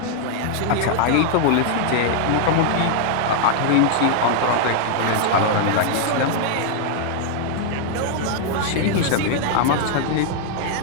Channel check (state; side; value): different; both; correlation 0.00